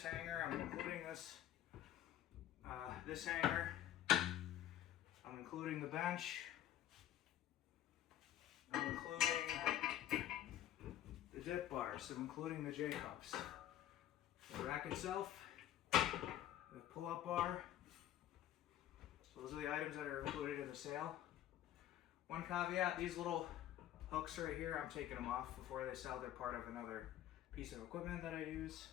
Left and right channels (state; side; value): quieter; right; 12.2 dB